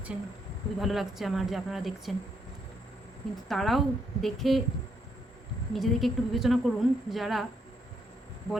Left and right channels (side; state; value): both; normal; correlation 0.75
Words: খুবই ভালো লাগছে আমার যে আপনারা দেখছেন, কিন্তু তারাও দেখে নিজেদেরকে একটু বিবেচনা করুন, যারা